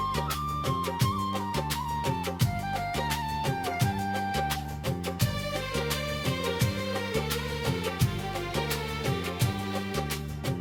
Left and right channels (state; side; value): identical; both; correlation 1.00